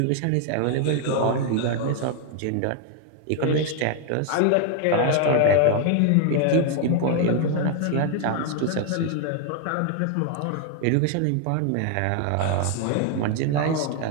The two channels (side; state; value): both; different; correlation 0.00